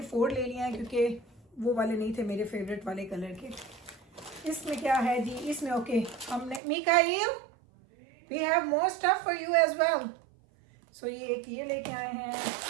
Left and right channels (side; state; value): left; drops out; at 6.6 s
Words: 4 ले लिए हैं क्योंकि वो वाले नहीं थे मेरे फेवरेट वाले कलर के। इसमें क्या है जी, इसमें ओके हमने Mikail we have more stuff for you as well. So ये एक ये लेके आए हैं,